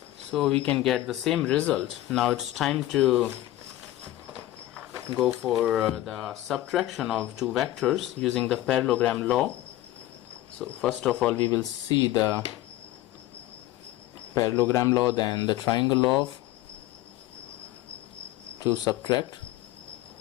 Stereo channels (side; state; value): right; quieter; 15.0 dB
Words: So we can get the same result. Now it's time to go for the subtraction of two vectors using the parallelogram law. So first of all we will see the parallelogram law, then the triangle law to subtract.